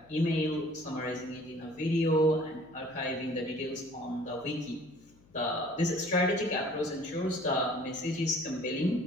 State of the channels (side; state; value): left; noise; hum, 28 dB below the sound